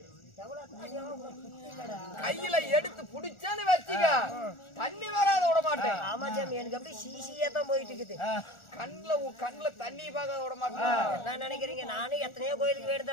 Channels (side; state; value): right; late; 1.4 ms